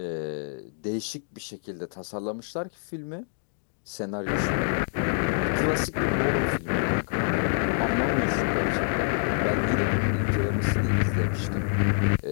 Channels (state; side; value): silent; right; digital silence